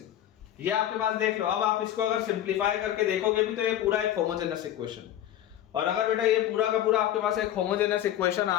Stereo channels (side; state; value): right; quieter; 11.8 dB